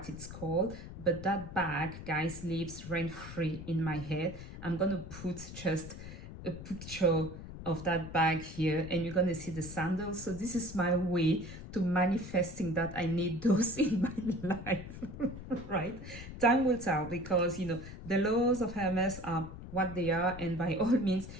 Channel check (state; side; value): noise; left; rumble, 12 dB below the sound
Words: it's called, but that bag, guys, lives rent-free in my head. I'm gonna put just a picture of that bag here, and you're gonna see the sandals. So this is my way to manifesting that I need those in my life. Right? Time will tell, because you know the laws of Hermes are what they are, and by all means,